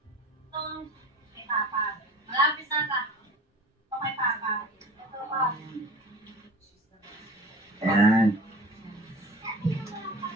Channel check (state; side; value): normal; both; correlation 0.39